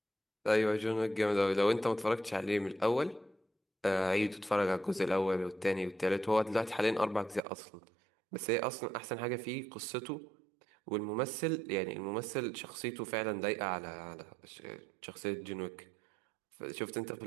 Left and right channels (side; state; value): left; drops out; at 7.4 s